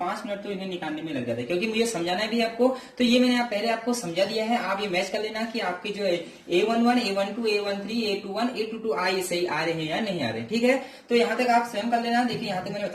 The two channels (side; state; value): both; identical; correlation 1.00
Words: मिनट तो इन्हें निकालने में लग जाता है, क्योंकि मुझे समझाना भी आपको। तो ये मैंने पहले आपको समझा दिया है, आप ये मैच कर लेना कि आपके जो A11, A12, A13, A21, A22 ये सही आ रहे हैं या नहीं आ रहे हैं, ठीक है। तो यहाँ तक आप स्वयं कर लेना। देखिए यहाँ तक मैंने